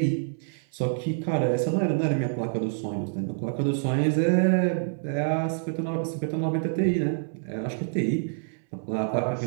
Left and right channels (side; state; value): left; silent; 60 dB below the other